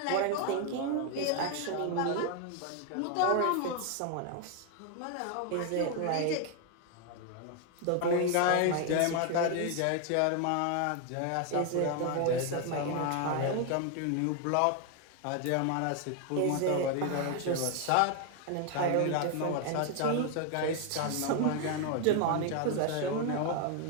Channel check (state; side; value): different; both; correlation 0.01